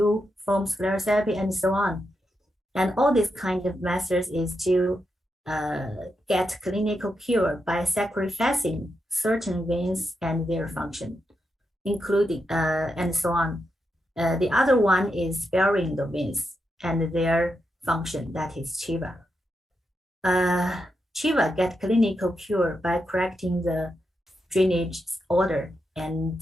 foam sclerotherapy, and so on. And all these kind of methods is to get clinical cure by sacrificing certain veins and their function, including and so on. The other one is sparing the veins and their function, that is Chiva. Chiva get clinical cure by correcting the drainage order and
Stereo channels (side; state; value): both; normal; correlation 0.85